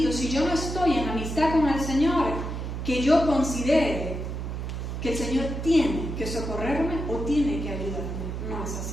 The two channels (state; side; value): noise; right; hum, 5 dB below the sound